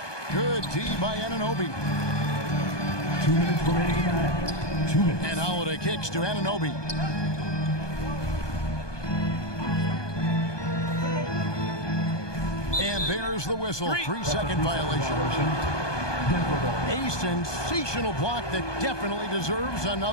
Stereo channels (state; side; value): late; right; 1.2 ms